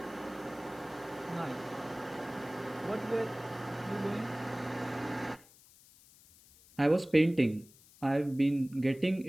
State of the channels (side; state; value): left; noise; hiss, 25 dB below the sound